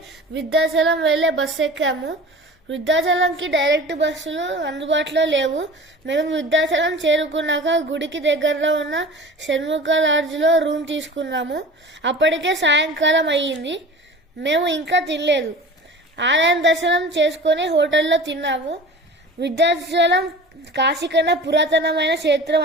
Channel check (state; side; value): normal; both; correlation 0.38